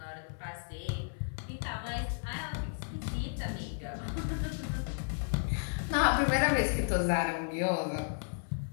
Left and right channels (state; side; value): silent; right; 55 dB below the other